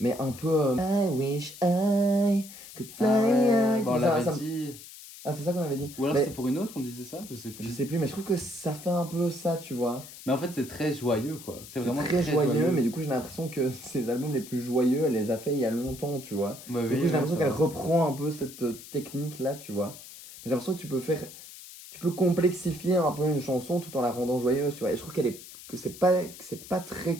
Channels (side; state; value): left; noise; hiss, 16 dB below the sound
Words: un peu I wish I could fly Ah ouais, high. bon, on Tout ça, l'avait ça me- dit. Ah, c'est ça qu'on avait dit. Ou alors Mais c'est pour une autre, on disait ça? Je sais je plus. sais plus, mais je trouve que ça fait un peu ça, tu vois. Mais en fait, c'est très joyeux, quoi. C'est C'est vraiment très joyeux, mais du coup j'ai l'impression que ces albums les plus joyeux, elle les a fait il y a longtemps, tu vois. Ouais, Du oui, coup j'ai ouais, l'impression ça qu'elle va. reprend un peu cette technique là, tu vois. J'ai l'impression que tu peux complexifier un peu une chanson tout en la rendant joyeuse, tu vois. Et je trouve que c'est pas